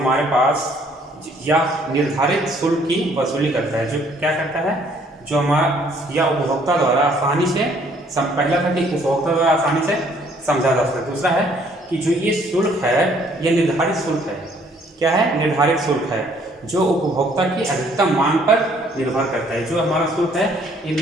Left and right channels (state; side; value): normal; both; correlation 0.62